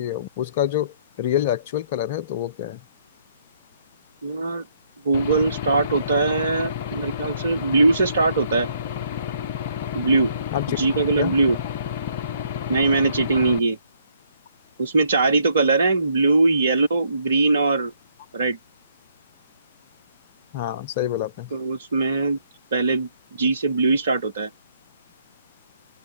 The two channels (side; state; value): both; inverted; correlation -0.68